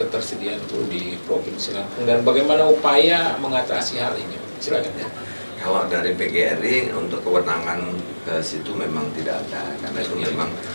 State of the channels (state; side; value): inverted; both; correlation -1.00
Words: ketersediaan guru di Provinsi Lampung dan bagaimana upaya mengatasi hal ini? Silakan ya. Kalau dari PGRI untuk kewenangan ke situ memang tidak ada, karena itu memang